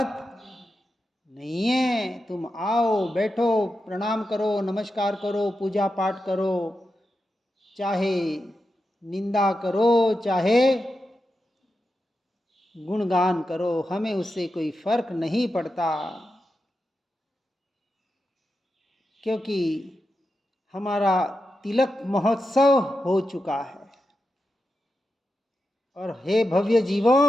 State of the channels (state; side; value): normal; both; correlation 0.89